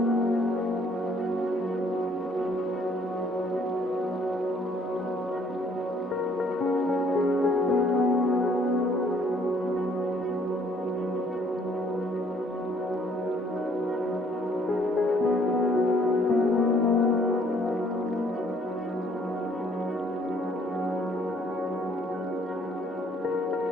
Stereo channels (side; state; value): both; normal; correlation 0.62